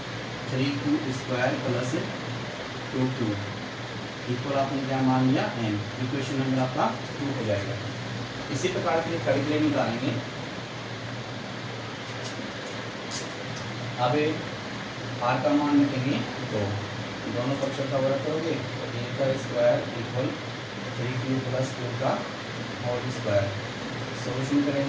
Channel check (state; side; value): identical; both; correlation 1.00